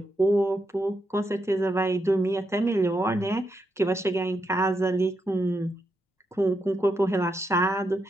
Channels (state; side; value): normal; both; correlation 0.82